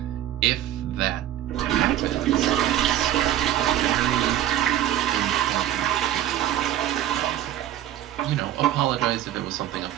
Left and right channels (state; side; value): quieter; left; 12.2 dB